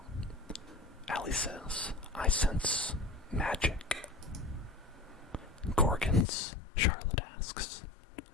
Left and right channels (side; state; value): right; drops out; at 6.2 s